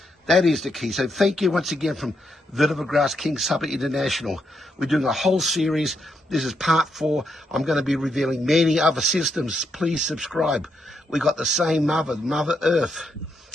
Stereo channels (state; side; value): normal; both; correlation 0.80